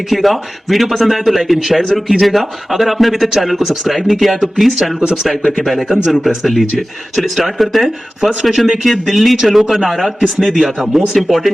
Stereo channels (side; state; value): both; normal; correlation 0.96